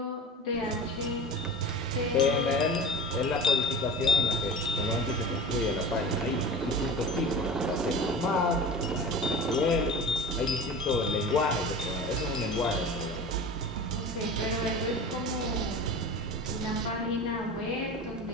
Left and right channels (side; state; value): both; normal; correlation 0.34